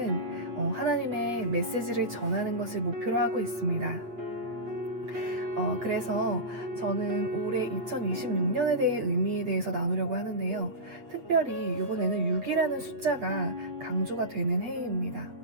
하나님의 메시지를 전하는 것을 목표로 하고 있습니다. 그래서 저는 올해 2026년에 대해 의미에 대해서 나누려고 하는데요. 특별히 이번에는 6이라는 숫자가 강조가 되는 해입니다.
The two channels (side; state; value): left; late; 8.4 ms